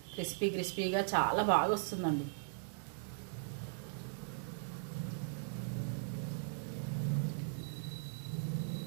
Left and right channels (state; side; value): silent; left; digital silence